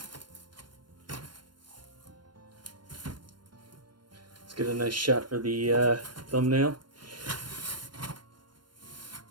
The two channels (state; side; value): late; left; 0.72 ms